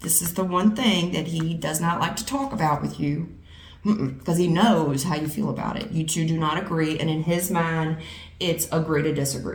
this is the one thing that he does not like to talk about with you, because he knows how you feel about it. You two do not agree, and in his mind, it's agree to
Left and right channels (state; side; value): identical; both; correlation 1.00